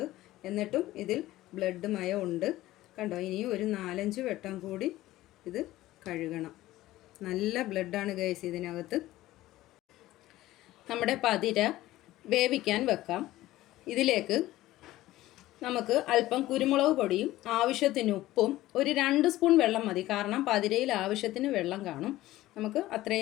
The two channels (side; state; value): right; quieter; 16.1 dB